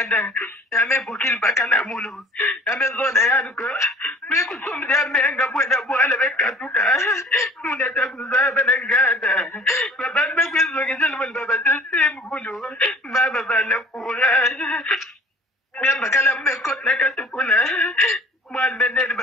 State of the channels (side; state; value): both; normal; correlation 0.48